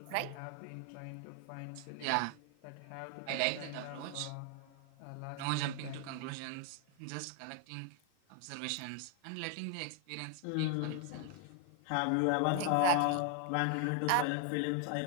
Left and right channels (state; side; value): different; both; correlation 0.00